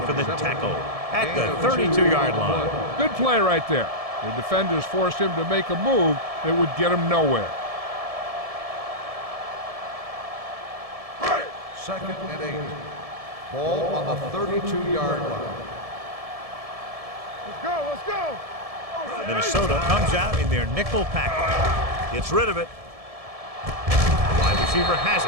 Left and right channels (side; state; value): left; late; 1.7 ms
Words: for the tackle at the 32-yard line. Good play right there. The defenders forced him to make a move that would get him nowhere. Second and 8. Ball on the 32-yard line. Let's go. Let's go. Minnesota comes out in their nickel package. Gets rid of it. Wide receiver has